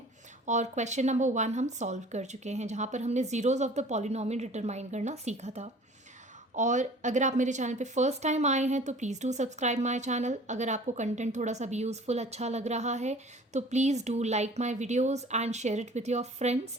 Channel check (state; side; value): normal; both; correlation 0.47